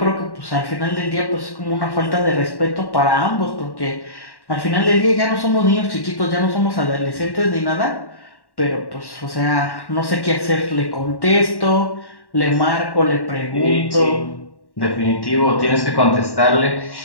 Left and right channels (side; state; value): right; late; 1.1 ms